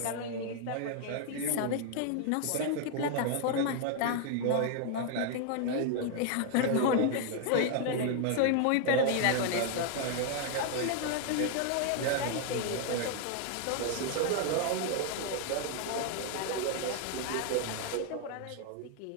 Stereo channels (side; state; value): both; different; correlation 0.00